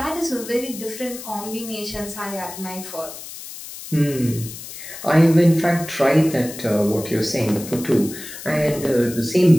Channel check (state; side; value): noise; left; hiss, 12 dB below the sound